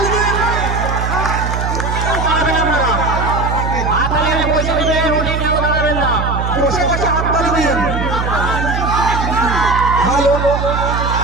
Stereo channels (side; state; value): right; noise; hum, 2 dB below the sound